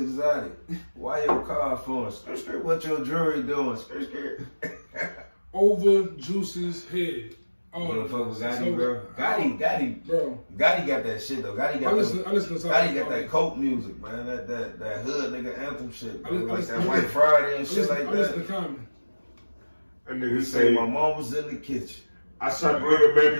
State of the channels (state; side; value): inverted; both; correlation -1.00